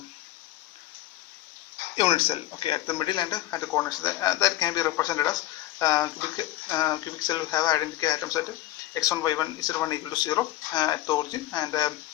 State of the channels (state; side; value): quieter; right; 15.3 dB